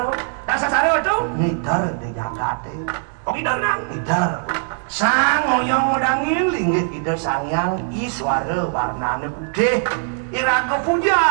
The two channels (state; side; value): silent; left; 63 dB below the other